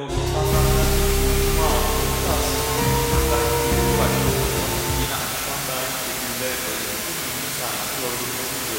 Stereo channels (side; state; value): both; identical; correlation 1.00